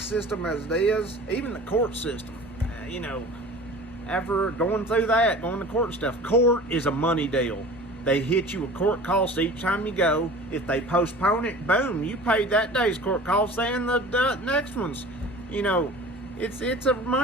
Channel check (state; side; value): normal; both; correlation 0.41